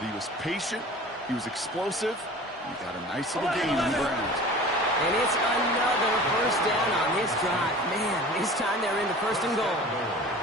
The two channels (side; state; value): both; normal; correlation 0.41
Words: he was patient, he was explosive, and he got a nice little gain on the ground. And it's another 1st down on this drive. Man, this time they're into 1st and goal.